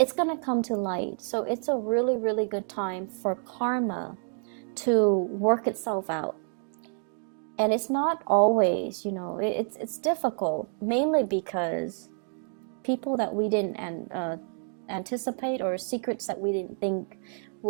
going to come to light. So it's a really, really good time for karma to work itself out. And it's not always, it's difficult, mainly because people that we didn't anticipate, or secrets that we didn't think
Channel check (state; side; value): silent; left; 59 dB below the other